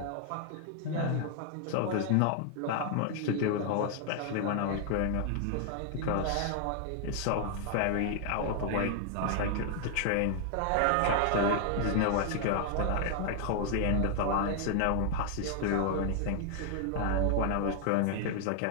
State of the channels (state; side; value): different; both; correlation 0.00